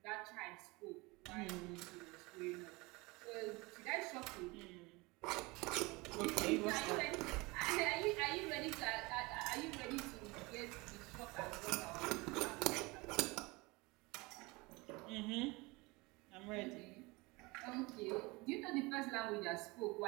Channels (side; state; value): left; quieter; 24.4 dB